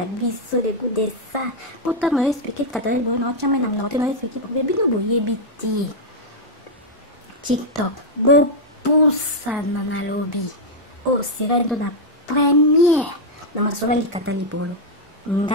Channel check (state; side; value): normal; both; correlation -0.02